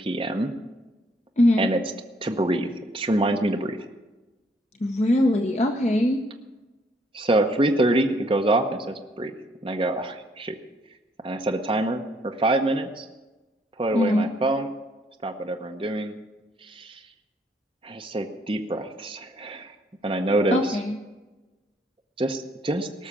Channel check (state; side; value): normal; both; correlation 0.67